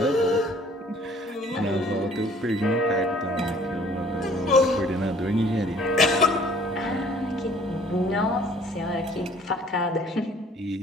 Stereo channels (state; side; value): normal; both; correlation 0.55